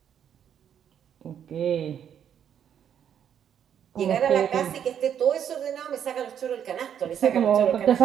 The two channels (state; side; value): quieter; left; 8.9 dB